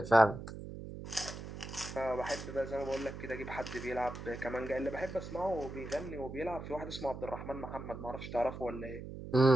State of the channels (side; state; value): right; noise; hum, 9 dB below the sound